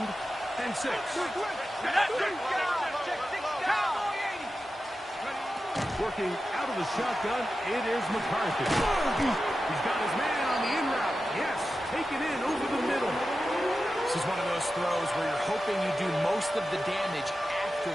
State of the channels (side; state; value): both; normal; correlation 0.92